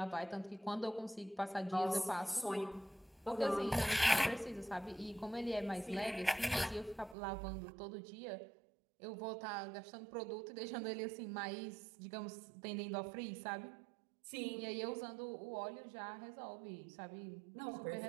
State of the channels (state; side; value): drops out; left; at 7.2 s